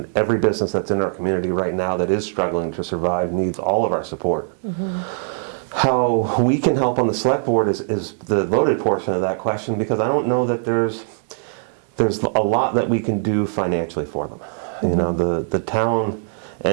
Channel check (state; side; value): silent; left; digital silence